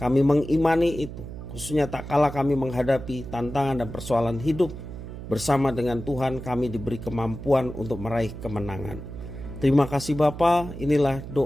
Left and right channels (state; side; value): noise; right; hum, 10 dB below the sound